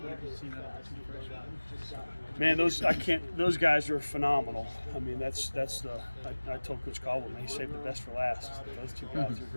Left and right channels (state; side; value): inverted; both; correlation -1.00